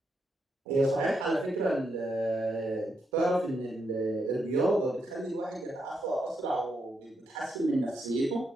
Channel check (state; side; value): normal; both; correlation 0.81